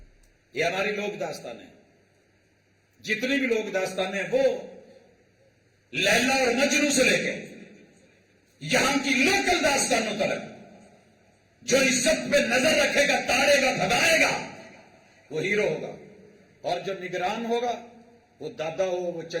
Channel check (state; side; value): identical; both; correlation 1.00